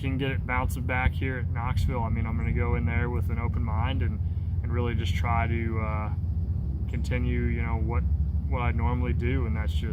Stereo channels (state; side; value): identical; both; correlation 1.00